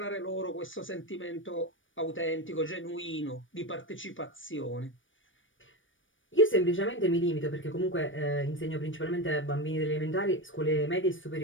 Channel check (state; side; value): late; right; 0.57 ms